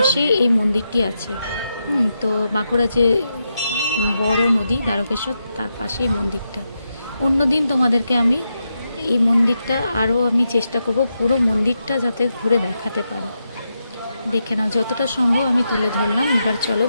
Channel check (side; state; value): both; inverted; correlation -0.86